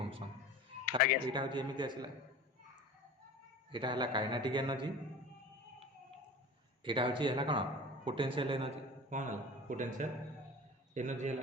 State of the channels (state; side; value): normal; both; correlation 0.36